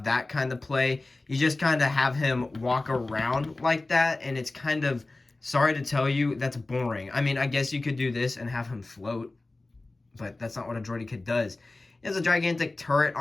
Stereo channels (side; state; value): right; quieter; 3.1 dB